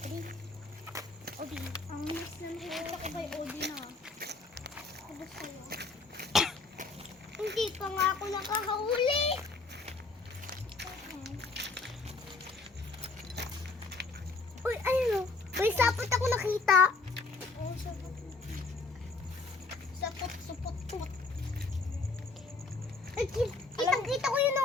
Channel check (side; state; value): right; quieter; 3.8 dB